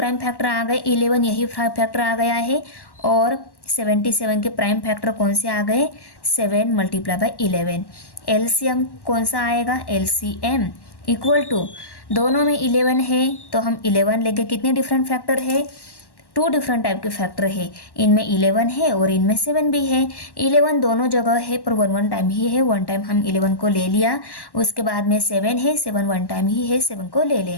फैक्टर आ गए, 11 यही फैक्टर आ गया है, और 77 के प्राइम फैक्टर कौन से आ गए, 7 मल्टीप्लाई बाय 11। एलसीएम कौन सा आएगा, एलसीएम इक्वल टू दोनों में 11 है तो हम 11 लेके कितने डिफरेंट फैक्टर है, 2 डिफरेंट टाइप के फैक्टर है, इनमें 11 है और इनमें 7 भी है। 11 दोनों जगह है पर 1 टाइम ही है, 1 टाइम हम 11 को ले लिया, उसके बाद में 7 है, 7 1 टाइम ही है, 7 को ले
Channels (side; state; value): right; late; 1.1 ms